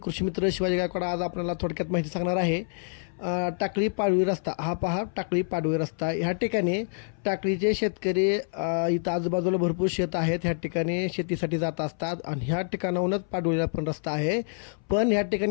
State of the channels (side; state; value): right; silent; 60 dB below the other